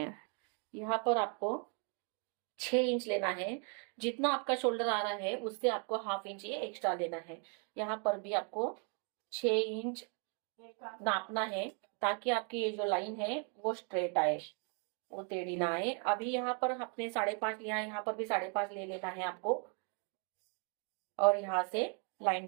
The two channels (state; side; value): quieter; left; 39.7 dB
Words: यहाँ पर आपको 6 इंच लेना है। जितना आपका शोल्डर आ रहा है उससे आपको हाफ इंच ये एक्स्ट्रा लेना है। यहाँ पर भी आपको 6 इंच नापना है ताकि आपकी ये जो लाइन है वो स्ट्रेट आए, वो टेढ़ी ना आए। अभी यहाँ पर आपने 5.5 लिया है, यहाँ पर भी 5.5 ले लेना है आपको और यहाँ से लाइन